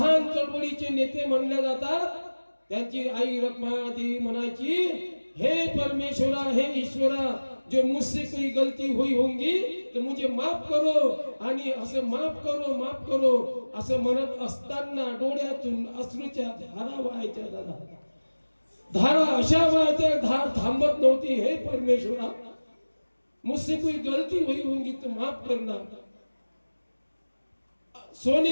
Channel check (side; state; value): both; inverted; correlation -1.00